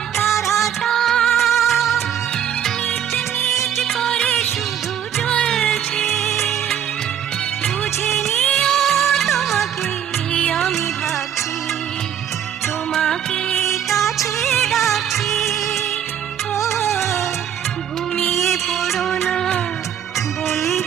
তারাটা মিট মিট করে শুধু জ্বলছে, বুঝে নিও তোমাকে আমি ভাবছি, তোমাকে কাছে ডাকছি। ও ঘুমিয়ে পড়ো না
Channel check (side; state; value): left; quieter; 9.4 dB